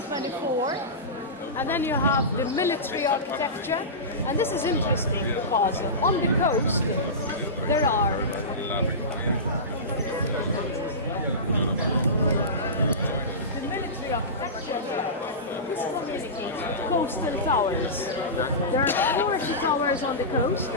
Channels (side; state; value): both; normal; correlation -0.20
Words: and then you have the military architecture. And this is interesting because on the coast there are the military architecture. This communicates coastal towers. There are 40 towers on the coast,